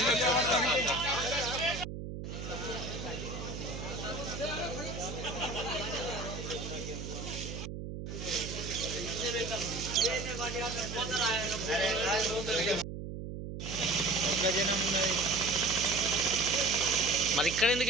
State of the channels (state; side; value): noise; right; hum, 7 dB below the sound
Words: మరి ఇక్కడ ఎందుకు